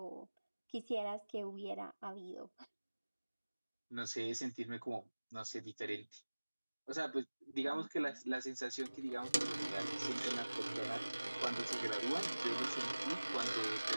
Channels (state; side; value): inverted; both; correlation -1.00